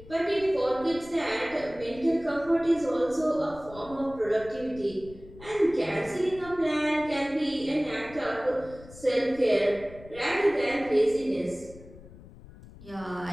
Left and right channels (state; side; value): noise; left; rumble, 19 dB below the sound